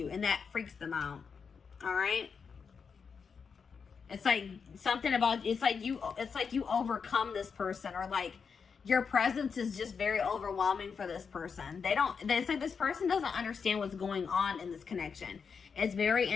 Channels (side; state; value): right; quieter; 5.9 dB